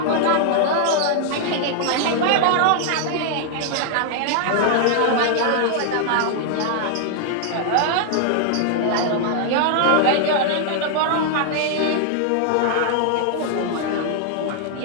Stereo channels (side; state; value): both; different; correlation -0.01